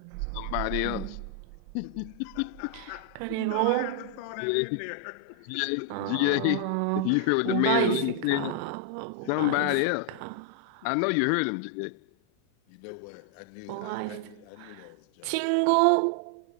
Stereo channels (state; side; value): different; both; correlation 0.00